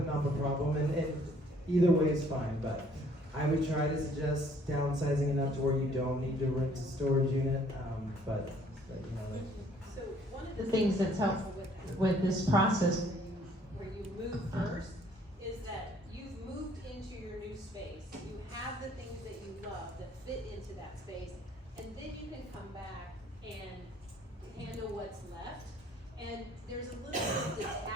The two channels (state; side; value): normal; both; correlation 0.60